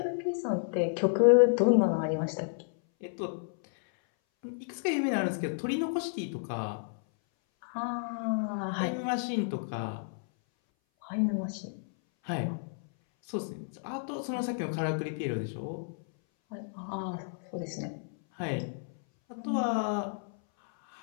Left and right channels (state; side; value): silent; right; 57 dB below the other